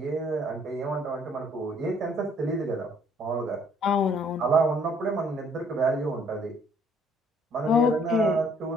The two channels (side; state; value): both; normal; correlation 0.62